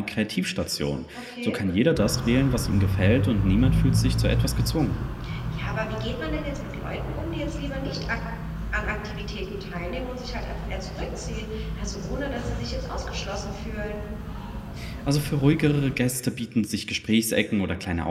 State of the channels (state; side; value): identical; both; correlation 1.00